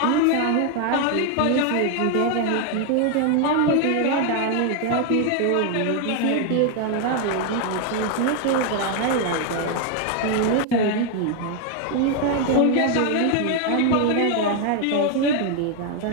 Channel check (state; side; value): different; both; correlation 0.01